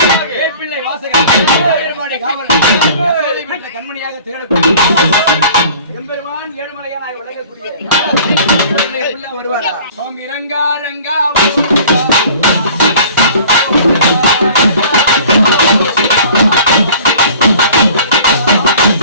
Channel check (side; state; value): both; inverted; correlation -0.47